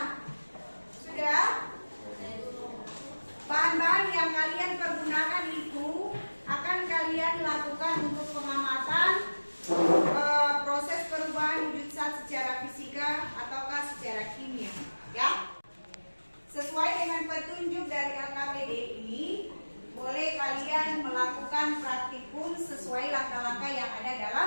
sudah. Bahan-bahan yang kalian pergunakan itu akan kalian lakukan untuk pengamatan proses perubahan wujud zat secara fisika ataukah secara kimia, ya. Sesuai dengan petunjuk dari LKPD ini, boleh kalian melakukan praktikum sesuai langkah-langkah yang ada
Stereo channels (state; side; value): inverted; both; correlation -1.00